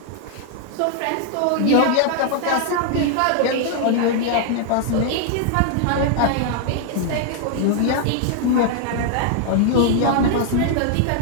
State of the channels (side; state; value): both; different; correlation 0.00